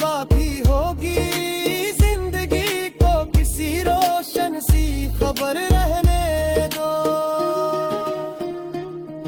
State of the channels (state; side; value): identical; both; correlation 1.00